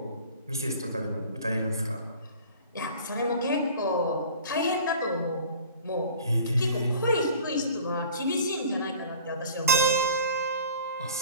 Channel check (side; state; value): both; inverted; correlation -0.46